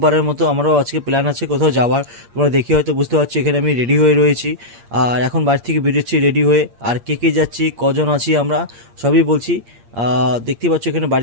মতো আমারও আজকে প্ল্যান আছে কোথাও যাওয়ার। তোমরা দেখে হয়তো বুঝতে পারছো এখানে আমি রেডি হয়ে রয়েছি। আর এখন বাড়ি থেকে বেরোচ্ছি রেডি হয়ে। আর কে কে যাচ্ছি, কজন আছি আমরা, সবই বলছি। দেখতেই পাচ্ছ এখানে বাড়ি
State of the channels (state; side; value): late; left; 8.6 ms